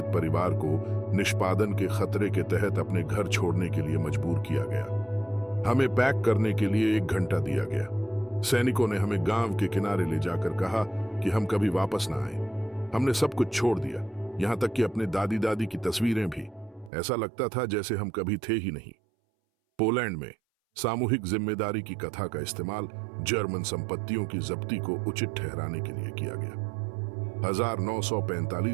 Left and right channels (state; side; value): drops out; left; at 16.9 s